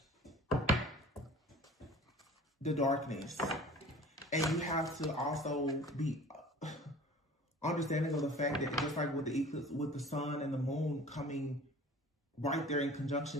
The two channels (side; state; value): both; normal; correlation 0.44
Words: the darkness. And you have to also be understanding of the fact that just like with the eclipse, with the sun and the moon coming right there in